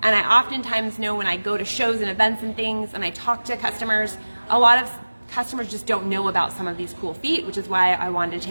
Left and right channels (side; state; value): both; inverted; correlation -1.00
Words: And I oftentimes know when I go to shows and events and things and I talk to customers, a lot of customers just don't know about some of these cool feet, which is why I wanted to